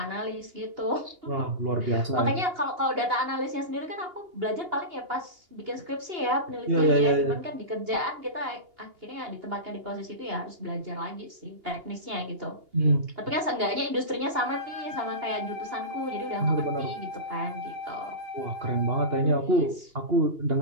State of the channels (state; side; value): late; left; 2.8 ms